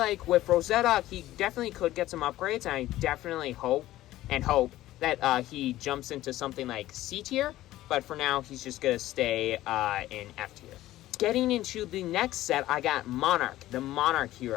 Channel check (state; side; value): quieter; right; 15.2 dB